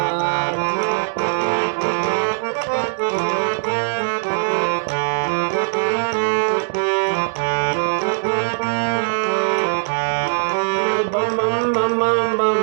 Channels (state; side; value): silent; left; digital silence